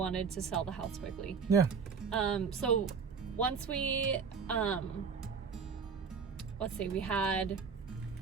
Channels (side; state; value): left; quieter; 5.7 dB